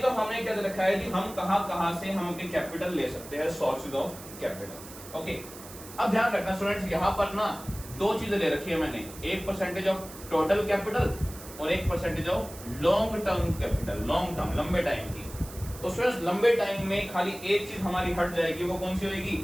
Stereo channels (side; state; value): right; noise; hiss, 16 dB below the sound